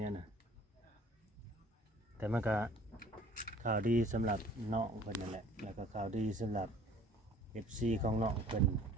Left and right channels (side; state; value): both; normal; correlation 0.52